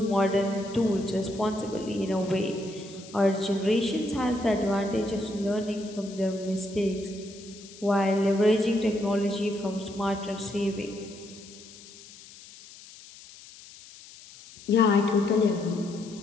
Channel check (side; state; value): left; noise; hiss, 19 dB below the sound